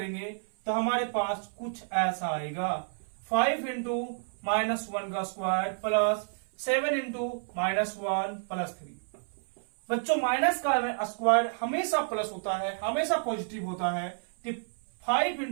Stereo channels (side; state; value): left; silent; 58 dB below the other